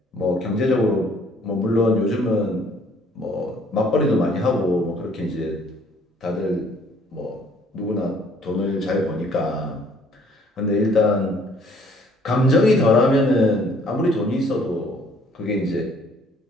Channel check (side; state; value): both; normal; correlation 0.60